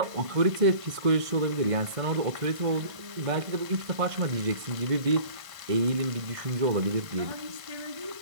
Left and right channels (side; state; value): left; late; 1.5 ms